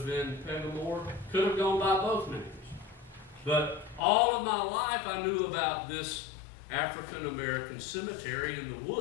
been Pegamore, could have gone by both names. But all of my life I knew about this African American cemetery in the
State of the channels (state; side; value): drops out; right; at 4.0 s